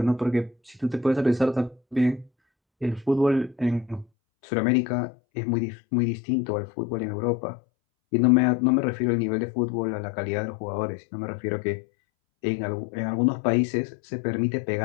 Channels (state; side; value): drops out; right; at 4.0 s